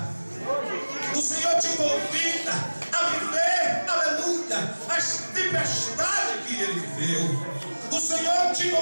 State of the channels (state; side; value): inverted; both; correlation -1.00